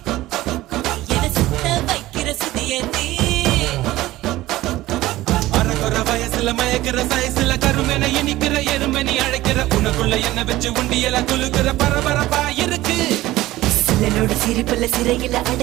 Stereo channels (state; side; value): quieter; left; 16.7 dB